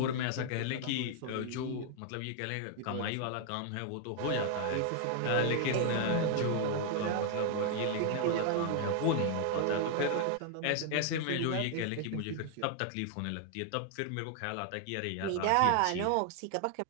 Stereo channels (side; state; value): both; different; correlation 0.00